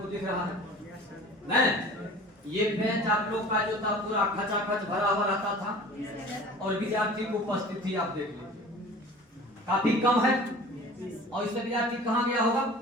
दिख रहा है नहीं। ये बेंच आप लोग का जो था पूरा खचाखच भरा हुआ रहता था, और विद्यार्थी की उपस्थिति आप देख लीजिए काफी कम है। और इससे विद्यार्थी कहाँ गया होगा?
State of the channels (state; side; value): normal; both; correlation 0.42